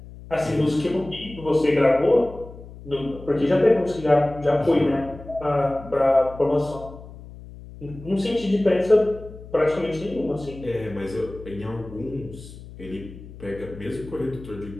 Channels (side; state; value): left; noise; hum, 16 dB below the sound